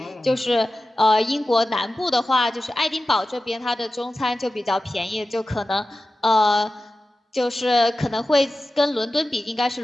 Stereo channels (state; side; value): normal; both; correlation 0.94